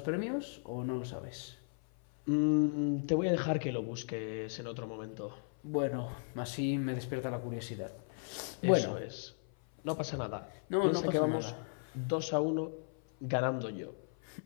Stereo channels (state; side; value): silent; right; 54 dB below the other